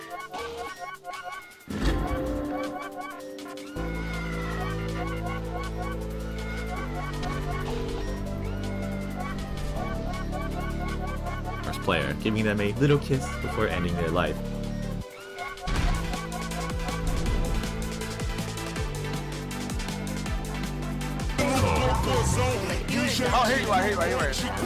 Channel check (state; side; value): identical; both; correlation 1.00